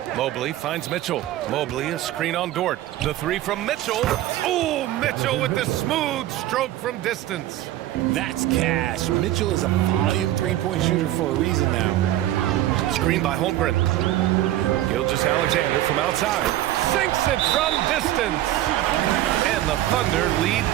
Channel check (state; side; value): quieter; left; 14.0 dB